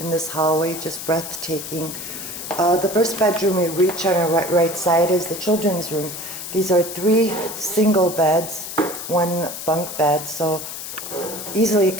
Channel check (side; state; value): left; noise; hiss, 8 dB below the sound